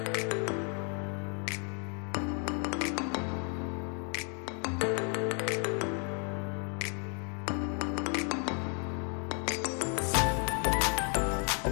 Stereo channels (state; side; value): quieter; right; 39.8 dB